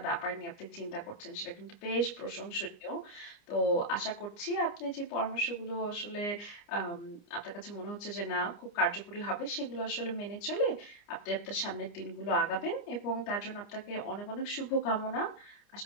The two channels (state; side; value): late; right; 29 ms